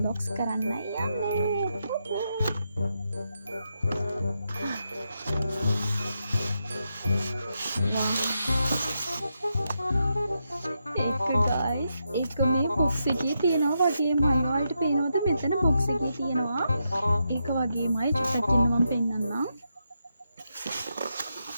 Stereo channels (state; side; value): inverted; both; correlation -0.84